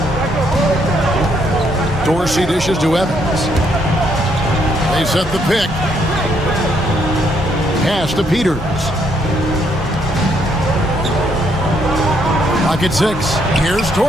Dorsey dishes to Evans. They set the pick. Pass to Peters. Clock at 6. Here's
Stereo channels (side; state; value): both; normal; correlation 0.72